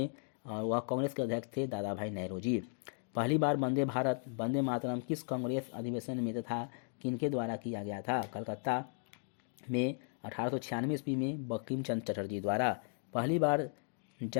और वह कांग्रेस के अध्यक्ष थे दादा भाई नेहरू जी। पहली बार वंदे भारत वंदे मातरम किस कांग्रेस अधिवेशन में तथा किनके द्वारा किया गया था? कलकत्ता में 1896 ईस्वी में बंकिम चंद्र चटर्जी द्वारा। पहली बार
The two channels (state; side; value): silent; right; 54 dB below the other